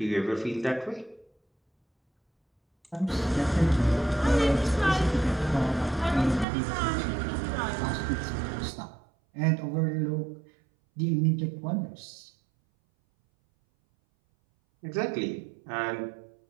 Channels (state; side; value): drops out; left; at 6.5 s